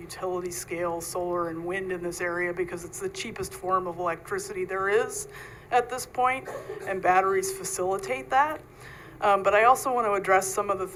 scale solar and wind in this area because it's the cheapest form of electricity there is at this point, and batteries facilitate that. But I also want to address some of the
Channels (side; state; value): both; identical; correlation 1.00